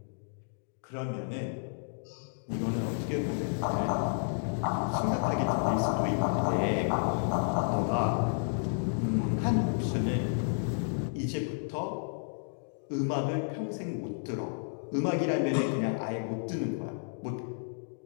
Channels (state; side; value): silent; right; digital silence